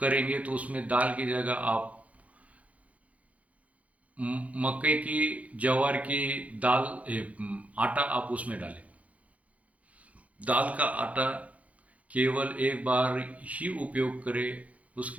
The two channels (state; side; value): late; left; 0.067 ms